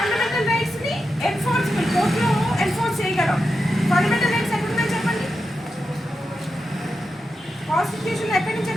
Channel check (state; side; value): normal; both; correlation 0.88